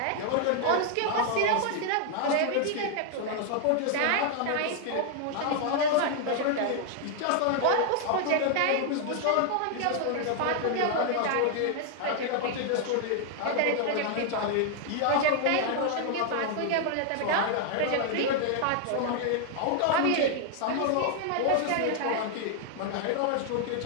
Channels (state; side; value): different; both; correlation 0.00